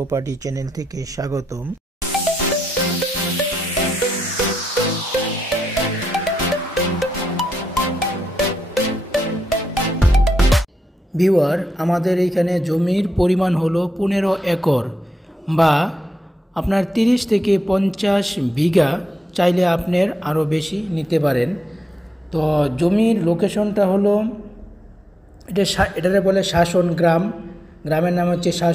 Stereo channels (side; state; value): both; normal; correlation 0.85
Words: চ্যানেল থেকে স্বাগতম। ভিউয়ার, আমাদের এইখানে জমির পরিমাণ হলো 15 একর বা আপনার 30 থেকে 50 বিঘা। চাইলে আপনার আরও বেশি নিতে পারেন। তো জমির লোকেশনটা হলো এটারে বলে শাসন গ্রাম। গ্রামের নাম হচ্ছে